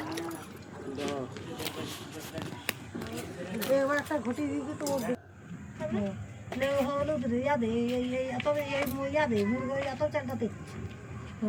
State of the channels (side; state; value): both; identical; correlation 1.00